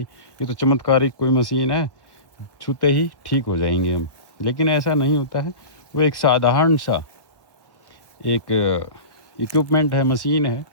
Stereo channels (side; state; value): right; late; 1.2 ms